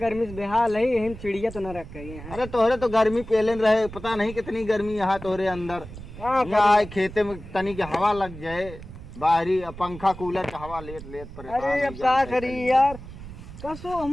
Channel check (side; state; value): right; noise; rumble, 14 dB below the sound